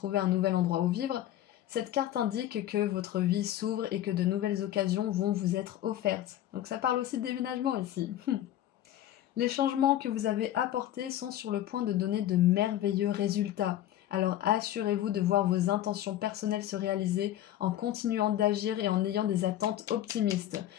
un nouvel endroit où vivre, cette carte indique que votre vie s'ouvre et que de nouvelles occasions vont vous être offertes. Donc ça parle aussi de déménagement ici. Les changements que vous avez apportés sont sur le point de donner de merveilleux résultats. Alors assurez-vous de voir vos intentions personnelles se réaliser en continuant d'agir et en ayant des attentes optimistes.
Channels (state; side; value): quieter; right; 12.7 dB